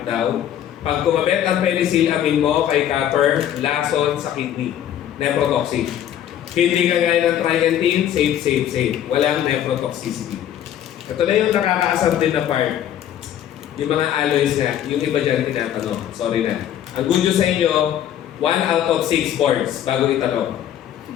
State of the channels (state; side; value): quieter; right; 10.8 dB